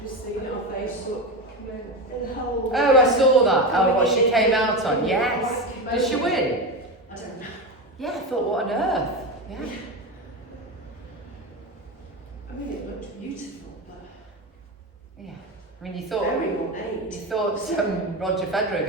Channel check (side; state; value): both; normal; correlation 0.18